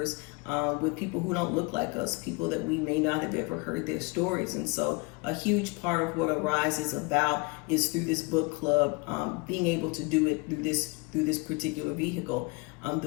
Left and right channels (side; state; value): right; quieter; 28.4 dB